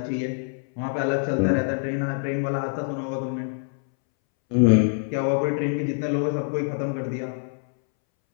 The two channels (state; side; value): silent; right; 62 dB below the other